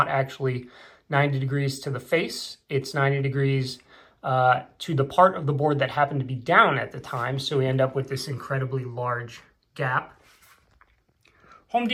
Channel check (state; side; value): identical; both; correlation 1.00